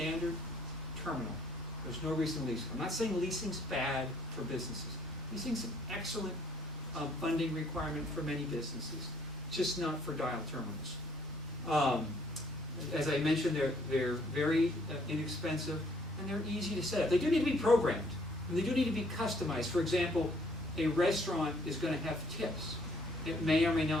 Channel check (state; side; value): normal; both; correlation 0.64